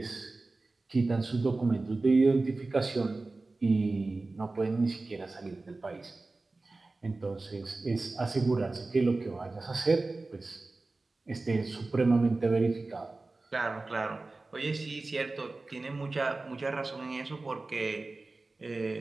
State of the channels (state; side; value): quieter; left; 3.3 dB